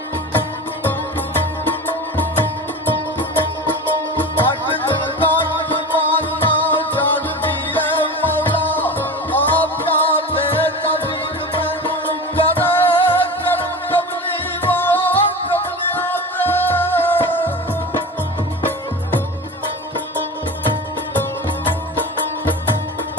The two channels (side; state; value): both; normal; correlation 0.30